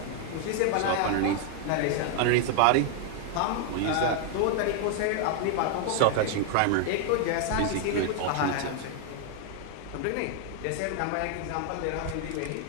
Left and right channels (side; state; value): both; different; correlation 0.00